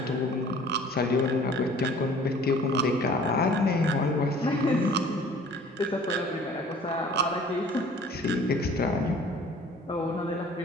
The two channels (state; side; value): normal; both; correlation 0.50